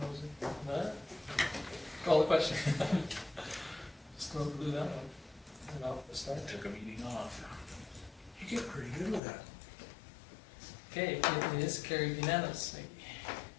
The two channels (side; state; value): right; drops out; at 9.2 s